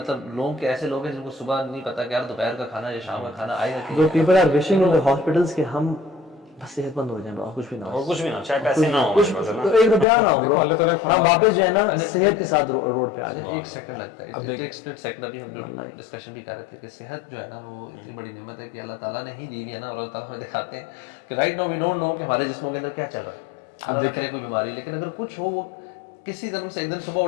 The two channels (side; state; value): right; drops out; at 10.1 s